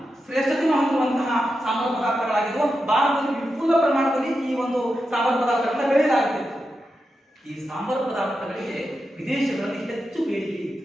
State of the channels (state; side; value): normal; both; correlation 0.88